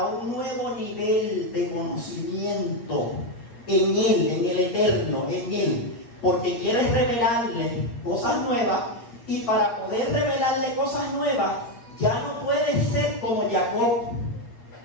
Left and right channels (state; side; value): late; right; 8.5 ms